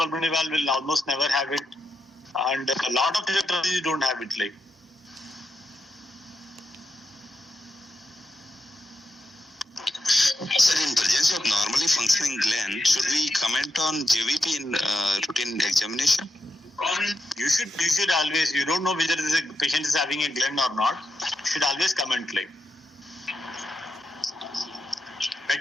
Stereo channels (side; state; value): both; normal; correlation 0.85